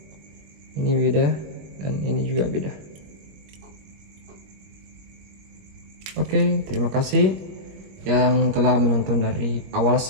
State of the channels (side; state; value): left; late; 21 ms